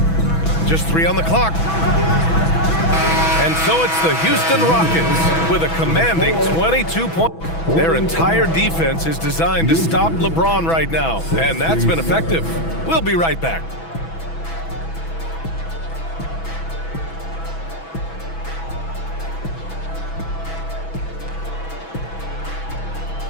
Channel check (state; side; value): late; right; 6.1 ms